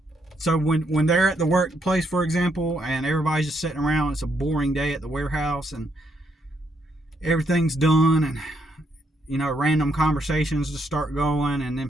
so when they're at the workplace, for example, and everybody's just sitting around, it's a boring day at the warehouse and everything's done, and, you know, random conversations just start going, and then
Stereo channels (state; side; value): normal; both; correlation 0.76